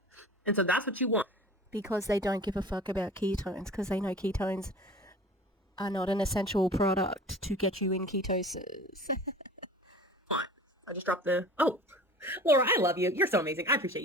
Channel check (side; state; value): both; normal; correlation 0.41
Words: And so that's what you want. Because they don't give a fuck about ketones, because they know ketones are not an essential product to get you in ketosis. Fine. I just dropped the... Oh, Laura, I love you. You're so amazing. I appreciate